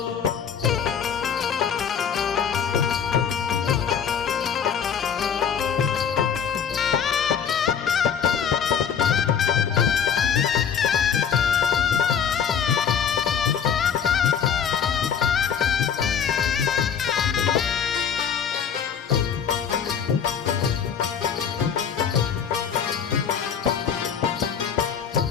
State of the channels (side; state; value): right; quieter; 7.6 dB